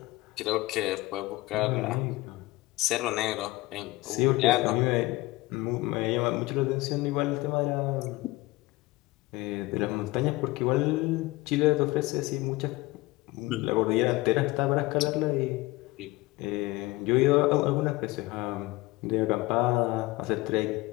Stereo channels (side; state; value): right; quieter; 20.4 dB